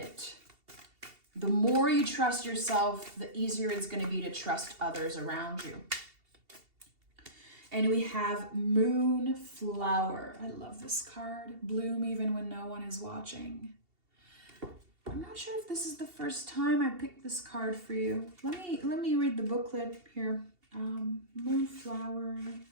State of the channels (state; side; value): late; left; 2.7 ms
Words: The more you trust yourself, the easier it's going to be to trust others around you. And we have Moonflower. I love this card. Bloom even when no one is watching. I'm not sure if this is the first time I picked this card for you. Let me read the booklet here. Moonflower.